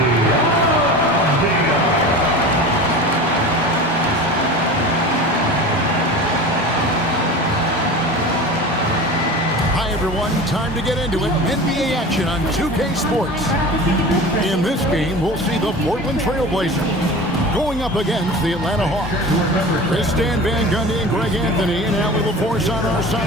Hi everyone, time to get into it. NBA action on 2K Sports. In this game, we'll see the Portland Trailblazers going up against the Atlanta Hawks. Chris Stan Van Gundy and Greg Anthony and Allie LaForce on our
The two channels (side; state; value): both; normal; correlation 0.34